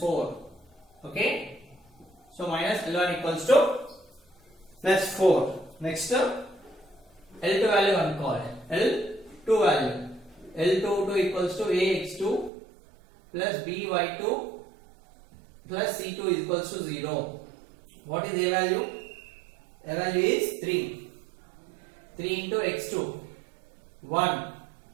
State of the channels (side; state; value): left; drops out; at 12.5 s